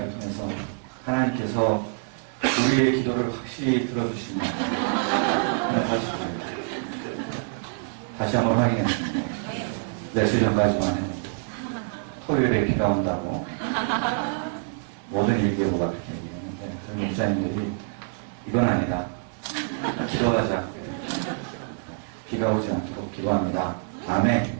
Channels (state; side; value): silent; left; 61 dB below the other